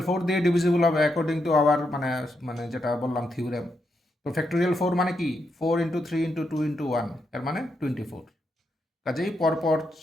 4 দিয়ে ডিভিজিবল হবে অ্যাকর্ডিং টু আওয়ার মানে মানে যেটা বললাম থিওরেম। তো ফ্যাক্টোরিয়াল 4 মানে কি 4 ইন্টু 3 ইন্টু 2 ইন্টু 1, এর মানে 24। কাজেই পরপর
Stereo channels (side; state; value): both; normal; correlation 0.82